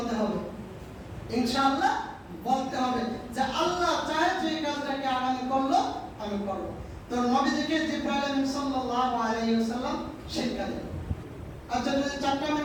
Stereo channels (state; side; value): identical; both; correlation 1.00